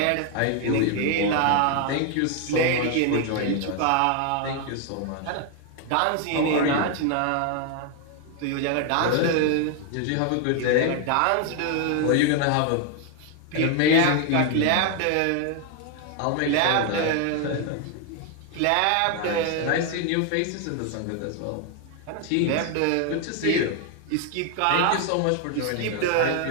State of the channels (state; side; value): different; both; correlation 0.01